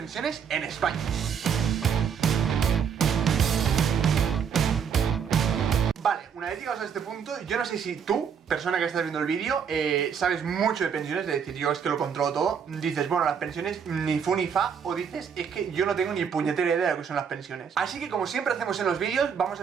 en España. Vale, una vez llegados a este punto, yo no sé si tú, persona que estás viendo el vídeo, sabes mucho de pensiones, es decir, yo es que lo controlo todo. Dices, bueno, las pensiones ni fu ni fa, o dices, es que yo no tengo ni puñetera idea de lo que son las pensiones. Así que como siempre hacemos en los vídeos, vamos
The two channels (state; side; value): quieter; left; 7.2 dB